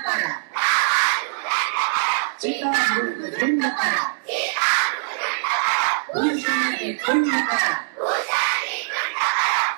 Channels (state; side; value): silent; left; digital silence